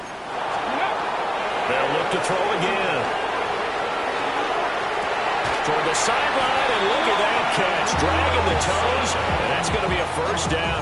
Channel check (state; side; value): identical; both; correlation 1.00